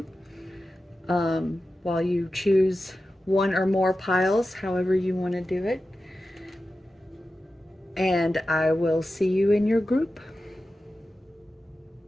while you choose one or more piles, however you want to do it. And I will see you in your group.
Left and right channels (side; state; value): both; normal; correlation 0.93